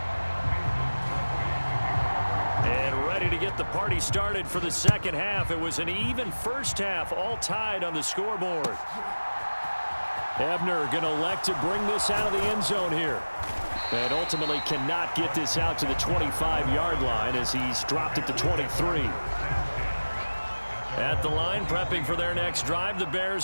To get the party started for the second half. It was an even first half, all tied on the scoreboard. Ebner going to elect to bring this out of the end zone here. And ultimately cannot get this out to the 25-yard line as he's dropped at the 23. At the line, prepping for their next drive, the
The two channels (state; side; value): inverted; both; correlation -1.00